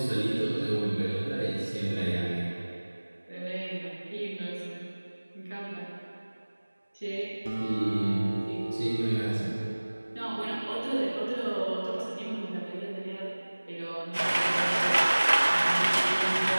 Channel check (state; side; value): inverted; both; correlation -1.00